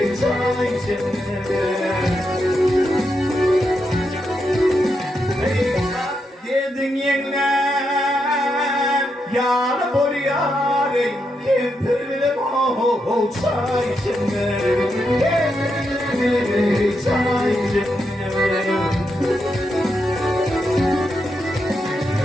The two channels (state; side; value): normal; both; correlation 0.83